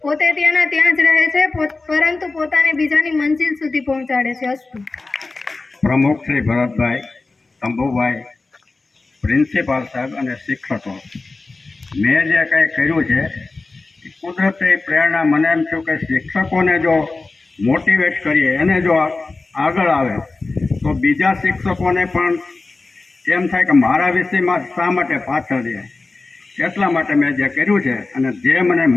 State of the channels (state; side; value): quieter; right; 3.6 dB